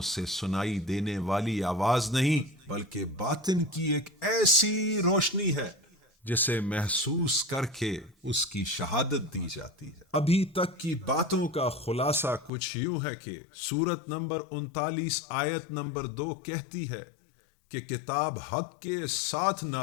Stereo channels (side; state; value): right; drops out; at 12.5 s